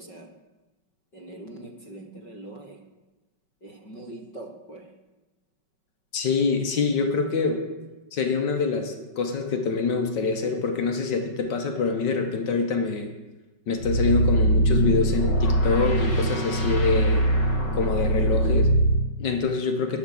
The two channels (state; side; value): late; right; 5.3 ms